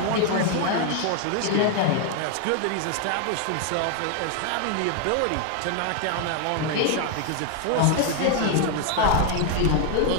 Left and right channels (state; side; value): different; both; correlation 0.00